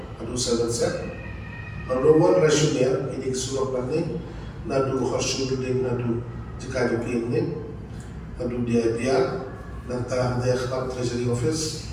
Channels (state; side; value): identical; both; correlation 1.00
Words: adu sahabat set nomor rasional ini kesulap nanti nadu khasud ding nadu jika jokin ni adu dia nanta dia khab treasury office